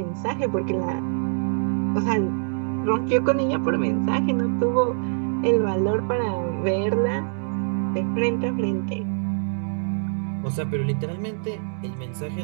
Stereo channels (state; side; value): silent; left; digital silence